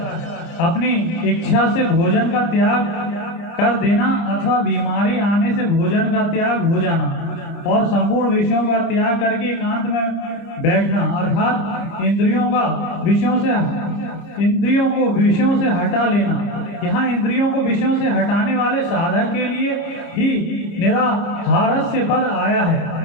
अपनी इच्छा से भोजन का त्याग कर देना अथवा बीमारी आने से भोजन का त्याग हो जाना और संपूर्ण विषयों का त्याग करके एकांत में बैठना, अर्थात इंद्रियों को विषयों से हटा लेना। यहाँ इंद्रियों को विषयों से हटाने वाले साधक के लिए ही निराहारस्य पद आया है।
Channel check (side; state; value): right; late; 30 ms